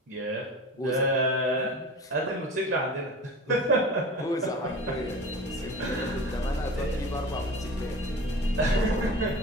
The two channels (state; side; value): normal; both; correlation 0.35